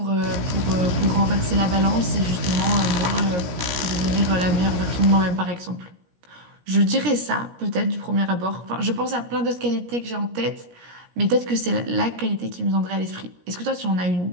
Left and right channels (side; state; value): left; late; 17 ms